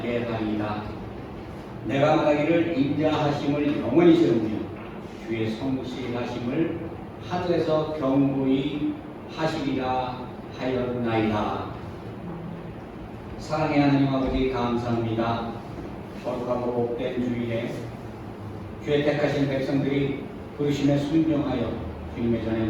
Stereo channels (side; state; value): both; identical; correlation 1.00